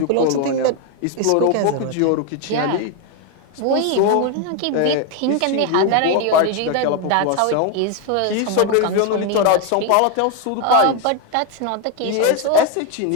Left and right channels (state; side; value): different; both; correlation 0.01